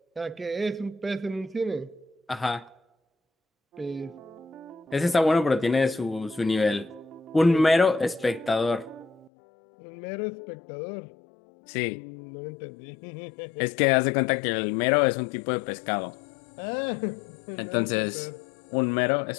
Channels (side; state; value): right; drops out; at 9.3 s